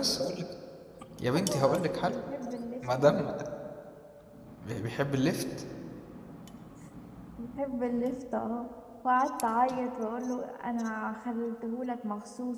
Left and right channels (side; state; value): both; identical; correlation 1.00